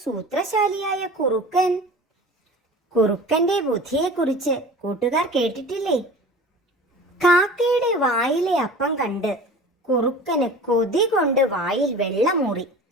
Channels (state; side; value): normal; both; correlation 0.39